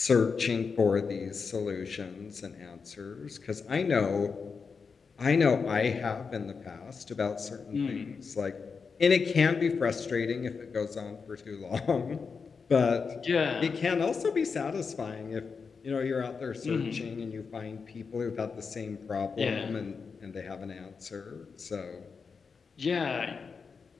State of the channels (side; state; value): right; quieter; 5.3 dB